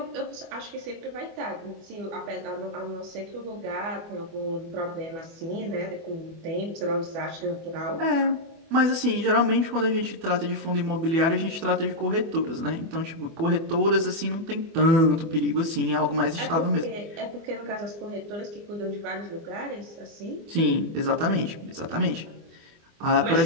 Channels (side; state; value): left; late; 24 ms